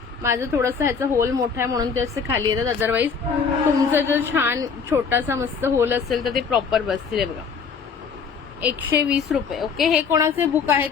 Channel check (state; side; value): quieter; right; 5.9 dB